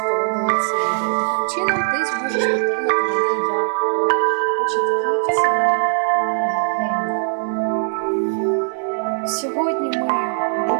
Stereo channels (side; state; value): left; silent; 66 dB below the other